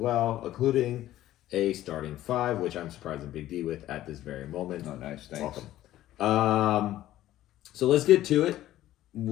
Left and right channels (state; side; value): quieter; right; 14.0 dB